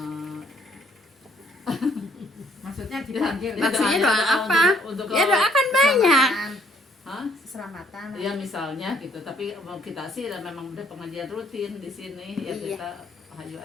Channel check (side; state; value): both; normal; correlation 0.64